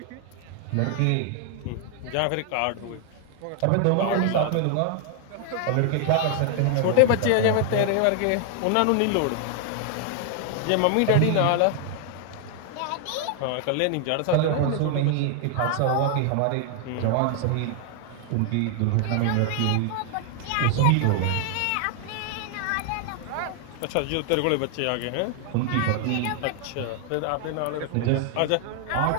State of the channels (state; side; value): different; both; correlation 0.00